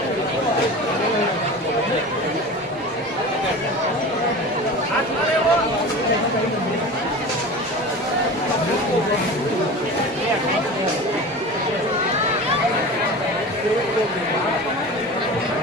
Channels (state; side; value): normal; both; correlation 0.33